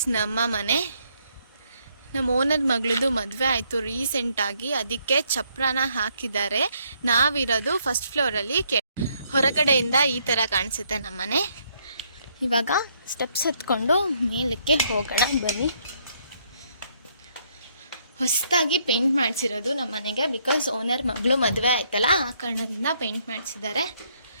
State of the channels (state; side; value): inverted; both; correlation -0.71